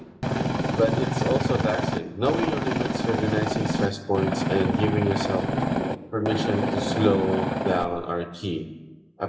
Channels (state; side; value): identical; both; correlation 1.00